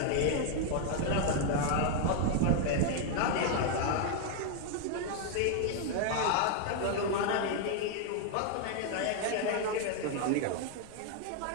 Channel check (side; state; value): both; different; correlation 0.00